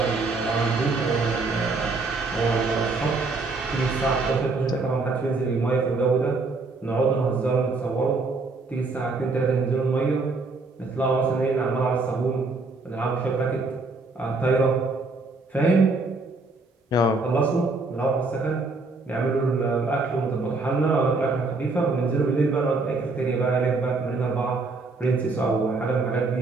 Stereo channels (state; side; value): quieter; left; 3.6 dB